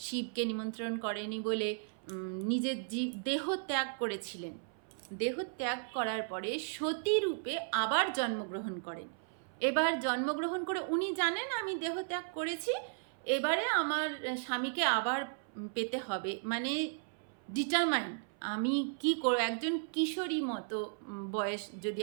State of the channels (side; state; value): left; silent; 54 dB below the other